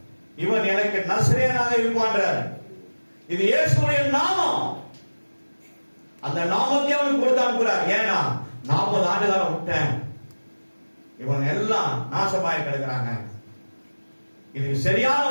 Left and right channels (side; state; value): both; inverted; correlation -1.00